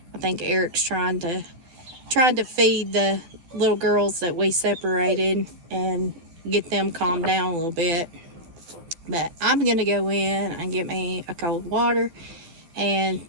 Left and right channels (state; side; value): late; left; 11 ms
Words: I think Eric's trying to feed the little girls that we separated and get them calmed down a little bit. But I'm gonna go in and get me a cold water and